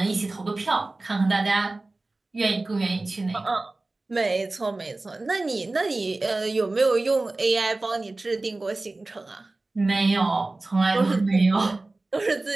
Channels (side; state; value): left; quieter; 3.1 dB